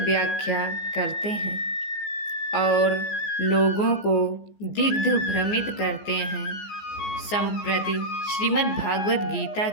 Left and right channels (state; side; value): late; right; 14 ms